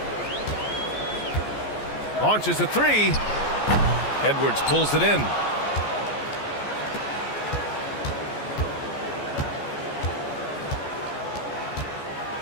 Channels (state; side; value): late; right; 14 ms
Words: Launches a 3. Edwards pulls it in.